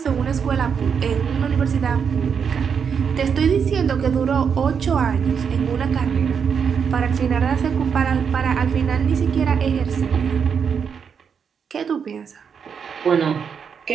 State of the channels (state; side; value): quieter; left; 6.8 dB